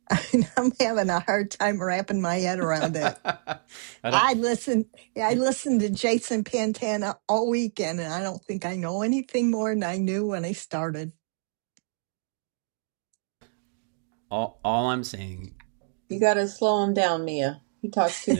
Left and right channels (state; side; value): silent; left; digital silence